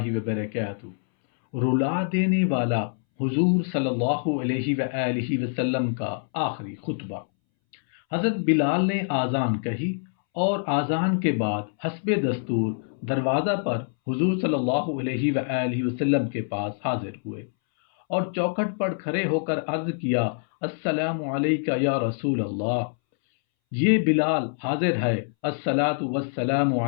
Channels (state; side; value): silent; right; 62 dB below the other